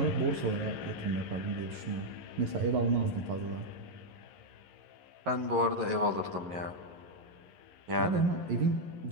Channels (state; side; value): late; left; 11 ms